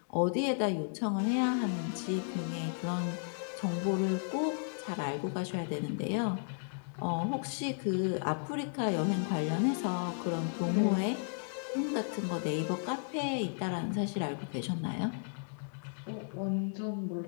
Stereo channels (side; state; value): right; silent; digital silence